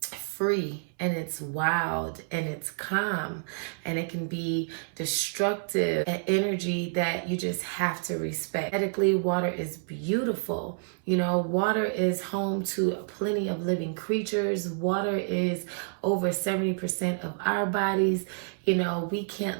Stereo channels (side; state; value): left; silent; 59 dB below the other